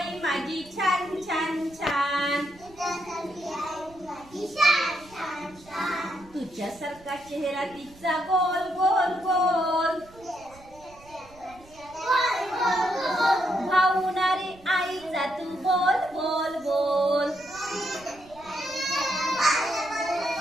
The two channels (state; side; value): noise; right; rumble, 24 dB below the sound